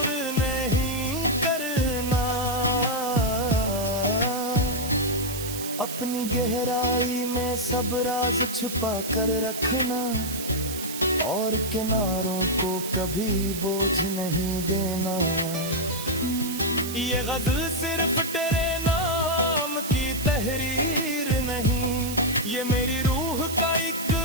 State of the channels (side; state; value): right; noise; hiss, 8 dB below the sound